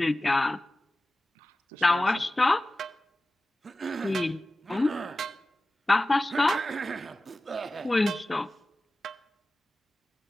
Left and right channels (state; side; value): normal; both; correlation 0.96